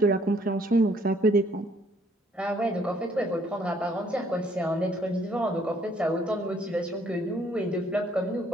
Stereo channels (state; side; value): normal; both; correlation 0.64